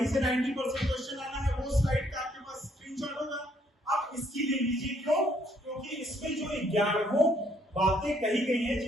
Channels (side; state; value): both; normal; correlation 0.68